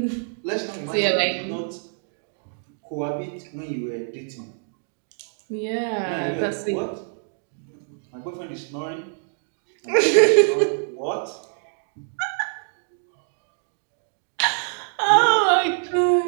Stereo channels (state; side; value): silent; left; digital silence